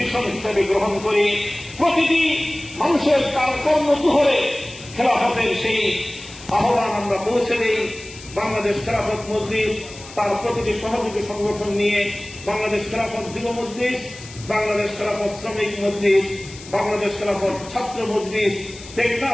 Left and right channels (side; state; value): left; noise; hiss, 17 dB below the sound